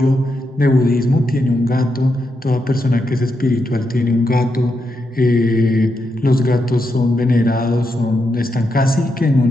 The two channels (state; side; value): normal; both; correlation 0.84